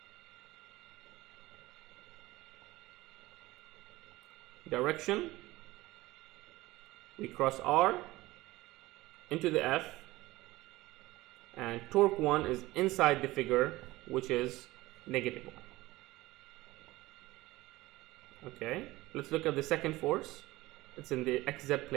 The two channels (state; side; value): quieter; left; 19.0 dB